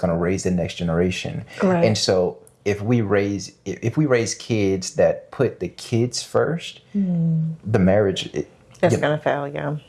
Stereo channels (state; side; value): identical; both; correlation 1.00